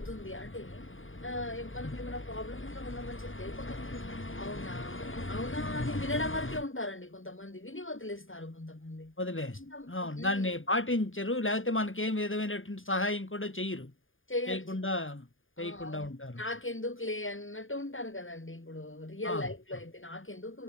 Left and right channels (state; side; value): late; right; 0.59 ms